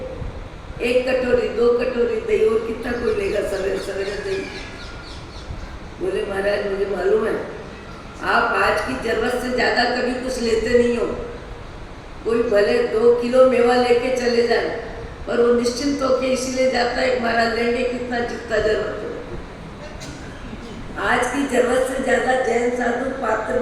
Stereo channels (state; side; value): identical; both; correlation 1.00